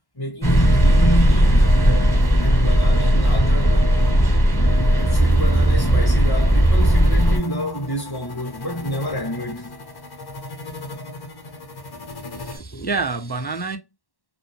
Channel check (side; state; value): right; late; 1.1 ms